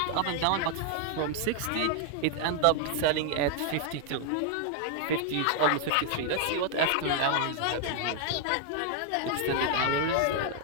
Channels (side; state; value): both; different; correlation 0.00